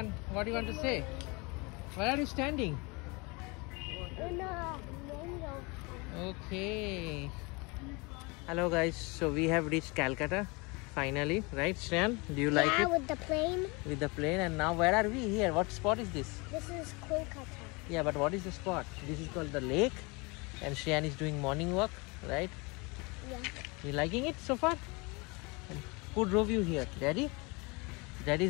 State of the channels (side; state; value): right; quieter; 27.8 dB